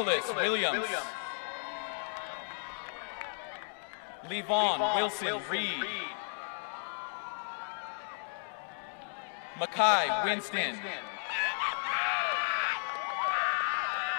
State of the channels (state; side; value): silent; right; digital silence